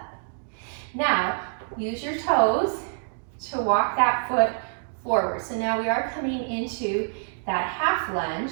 Now, use your toes to walk that foot forward. So now we are coming into that half lunge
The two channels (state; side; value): silent; left; digital silence